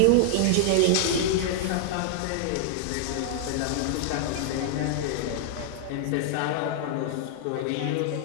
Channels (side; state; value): both; different; correlation -0.01